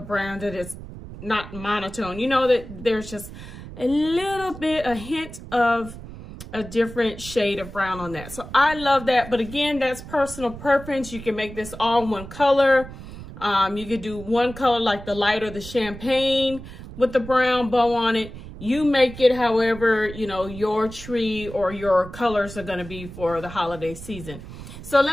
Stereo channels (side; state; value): right; noise; rumble, 13 dB below the sound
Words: brown, that it's not monotone. You know, that there's just a little bit, a hint of a different shade of brown on that. So I love that. But again, that's personal preference. You can make this all one color. You could do one color like the light or the champagne with the brown bow on it. You make it however, you know, your tree or your colors are going to be for the holiday season. So